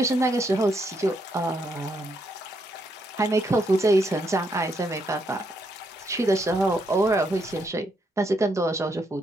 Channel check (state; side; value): normal; both; correlation 0.77